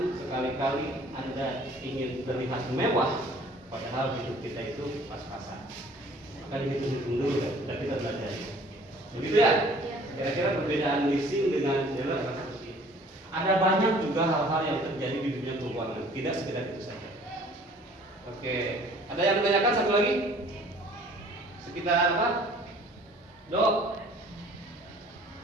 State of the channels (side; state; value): both; normal; correlation 0.53